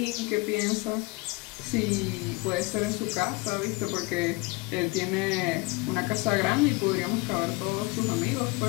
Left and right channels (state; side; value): quieter; right; 24.6 dB